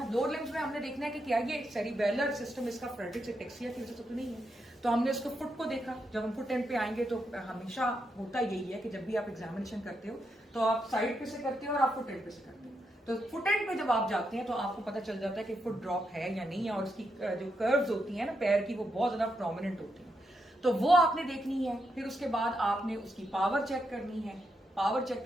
लोअर लिम्स में हमने देखना है कि क्या ये सेरिबेलर सिस्टम इसका फ्रेडरिक्स एटेक्सिया की वजह से तो नहीं है। तो हमने उसको फुट को देखा। जब हम फुट एंड पे आएंगे तो हमेशा होता यही है कि जब भी आप एग्जामिनेशन करते हो तो आप साइड पे से करते हो और आप फुट एंड पे से करते हो। तो फुट एंड पे जब आप जाते हैं तो आपको पता चल जाता है कि फुट ड्रॉप है या नहीं है, और उसकी जो कर्व्स होती है ना पैर की, वो बहुत ज्यादा प्रोमिनेंट होती है। तो वो आपने देखनी है। फिर उसके बाद आपने उसकी पावर चेक करनी है। पावर चेक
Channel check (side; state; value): both; normal; correlation 0.82